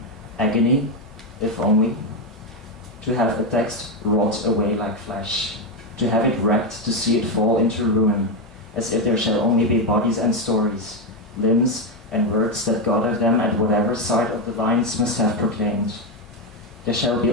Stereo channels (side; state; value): both; normal; correlation 0.07